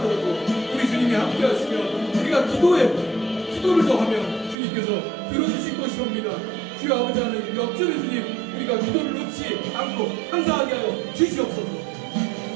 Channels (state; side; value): drops out; left; at 4.5 s